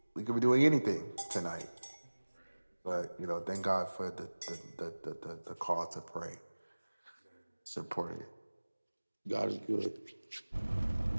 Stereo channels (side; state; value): both; inverted; correlation -1.00